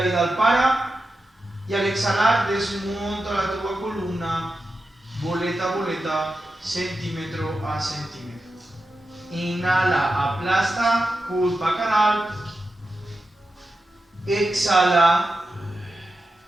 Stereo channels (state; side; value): normal; both; correlation 0.91